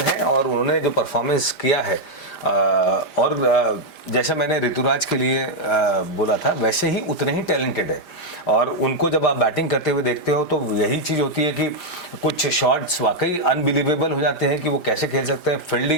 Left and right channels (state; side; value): late; right; 5.0 ms